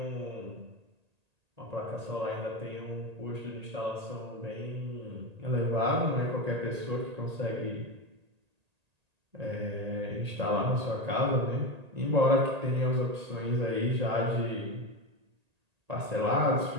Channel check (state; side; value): late; left; 1.8 ms